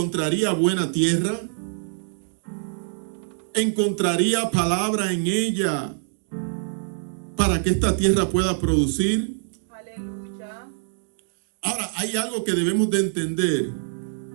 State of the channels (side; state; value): left; silent; digital silence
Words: buena tierra? ¿Encontraría palabra en ella para que esta tierra pueda producir? Aleluya. Ahora, hay algo que debemos de entender.